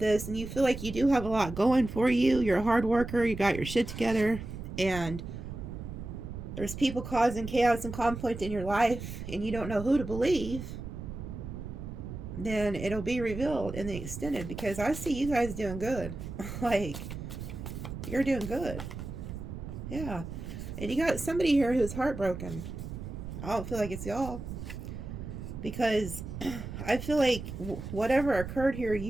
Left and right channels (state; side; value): noise; right; rumble, 8 dB below the sound